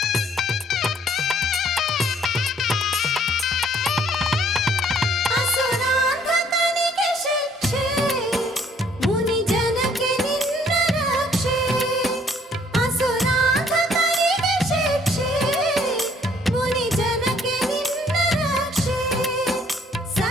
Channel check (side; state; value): both; normal; correlation 0.62